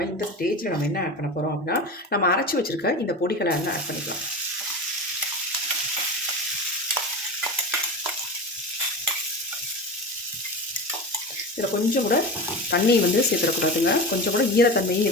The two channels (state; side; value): normal; both; correlation 0.27